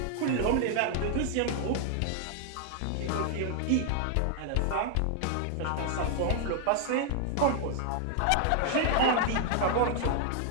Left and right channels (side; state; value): both; different; correlation 0.00